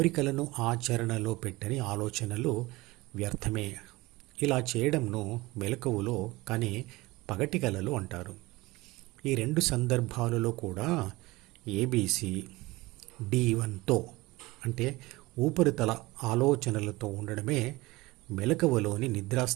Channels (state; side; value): quieter; left; 20.9 dB